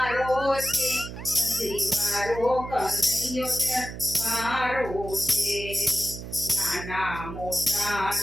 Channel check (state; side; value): noise; right; hum, 10 dB below the sound